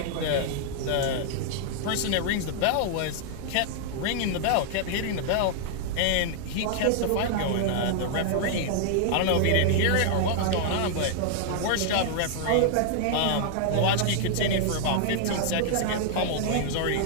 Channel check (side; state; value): both; different; correlation -0.01